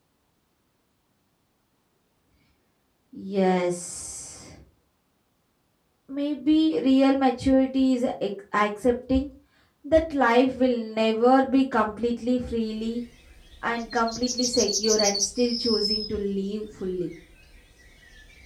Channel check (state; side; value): identical; both; correlation 1.00